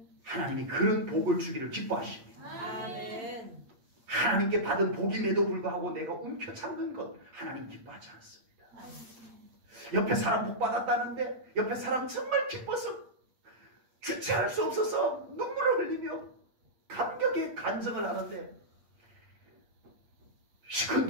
하나님이 그런 복을 주기를 기뻐하십니다. 하나님께 받은 복임에도 불구하고 내가 움켜잡는 것 하나님 기뻐하지 않습니다. 옆에 사람 복 받았다는데 옆에 사람 정말 기뻐서 주체할 수 없어서 눈물을 흘리며 감격에 간증을 하는데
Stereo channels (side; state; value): left; late; 8.6 ms